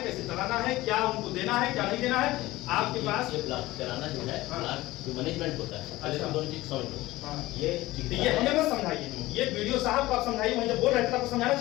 कैसे चलाना है, क्या उनको देना है, क्या नहीं देना है। आपके पास ये ब्लॉक कराना जो है, जो मैनेजमेंट होता है, अच्छा, दोनों चीज समझ लो। ये हमें मत समझाइए, ये वीडियो साहब को आप समझाइए, वहीं जब बोल रहे थे आपको समझाना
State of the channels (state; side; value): quieter; right; 18.1 dB